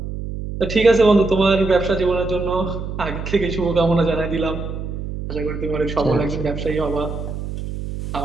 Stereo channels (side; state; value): right; noise; hum, 7 dB below the sound